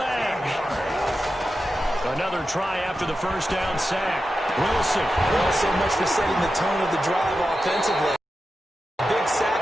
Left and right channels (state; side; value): normal; both; correlation 0.91